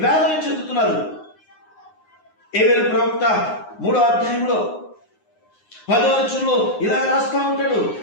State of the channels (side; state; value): right; late; 9.6 ms